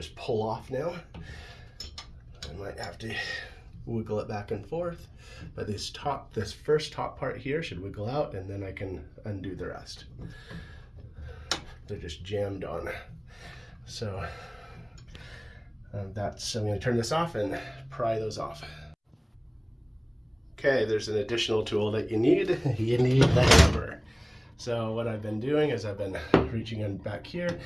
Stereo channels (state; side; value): identical; both; correlation 1.00